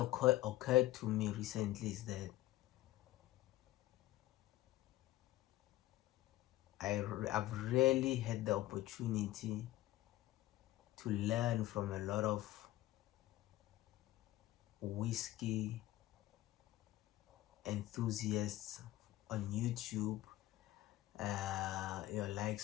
to me recently is that I've really had the opportunity to learn from a lot of whiskey enthusiasts on YouTube, your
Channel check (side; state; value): right; quieter; 16.0 dB